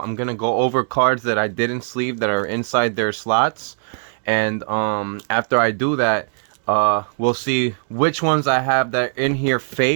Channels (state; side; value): silent; left; digital silence